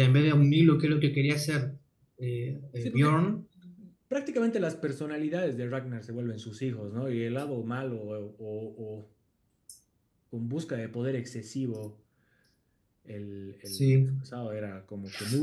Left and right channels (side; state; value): both; identical; correlation 1.00